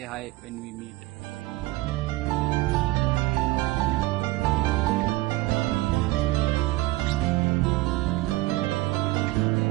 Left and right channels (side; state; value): left; quieter; 19.0 dB